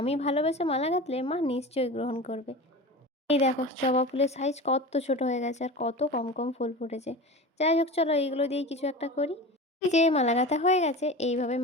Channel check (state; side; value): normal; both; correlation 0.31